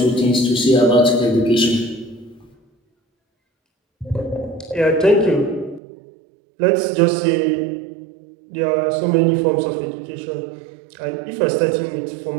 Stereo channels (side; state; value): left; drops out; at 5.8 s